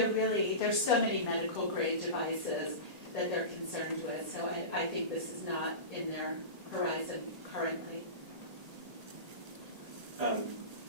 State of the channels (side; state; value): left; late; 1.9 ms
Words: so many medical grade devices that they're concerned with, so I think this is not in their horizon currently. I